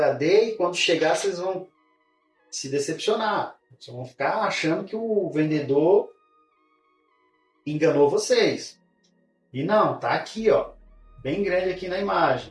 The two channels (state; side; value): identical; both; correlation 1.00